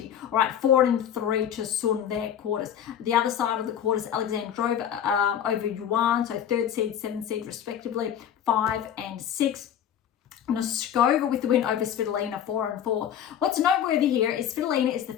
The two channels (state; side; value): quieter; right; 9.4 dB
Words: All right, 4 and 3 to Sun there, quarters. The other side of the quarters, Alexandrova over Yuan, so 3rd seed, 7th seed respectively, 5 and 6. Noskova with the win over Svitolina, 4 and 4. What's noteworthy here is Svitolina is the